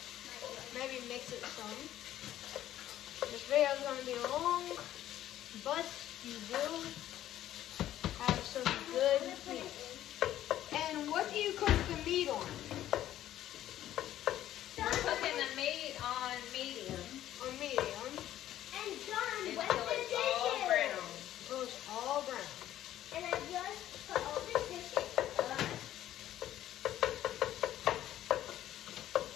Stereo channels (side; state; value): right; quieter; 12.7 dB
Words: Maybe mix it some. This video is going to be long, but you will have some good meat. And what do you cook the meat on? We're cooking the meat on medium On medium. And John, until what's the it's all dishes? brown. So it's all brown. And I just put all the dishes up.